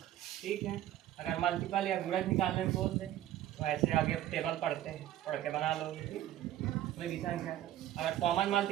ठीक है। अगर मल्टीपल या गुणज निकालने में बोल दे तो ऐसे आगे टेबल पढ़ते हैं, पढ़ के बना लोगे, ठीक है। कोई भी संख्या अगर कॉमन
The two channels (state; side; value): quieter; left; 13.0 dB